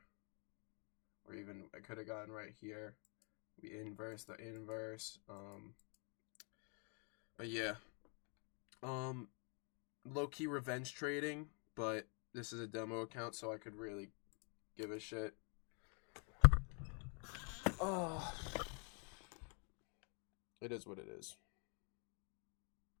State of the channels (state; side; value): quieter; right; 38.1 dB